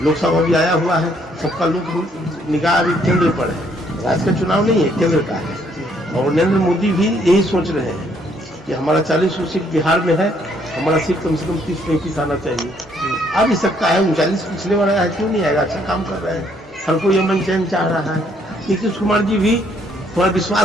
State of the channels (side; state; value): both; normal; correlation 0.68